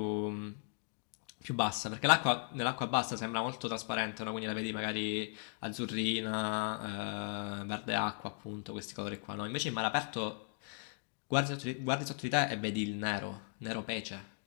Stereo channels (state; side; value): silent; right; 53 dB below the other